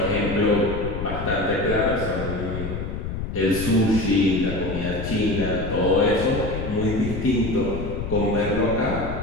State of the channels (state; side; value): noise; left; rumble, 6 dB below the sound